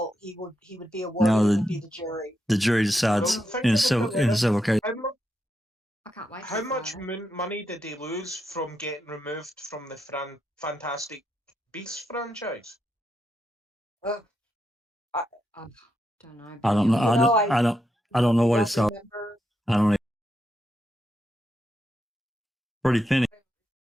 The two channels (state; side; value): normal; both; correlation 0.83